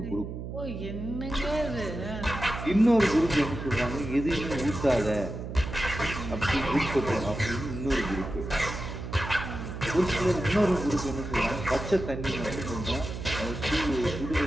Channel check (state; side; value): noise; right; hum, 7 dB below the sound